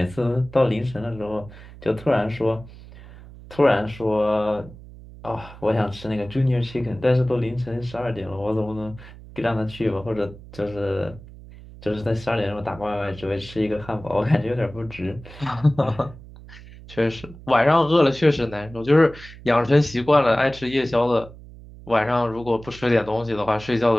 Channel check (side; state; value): right; noise; hum, 18 dB below the sound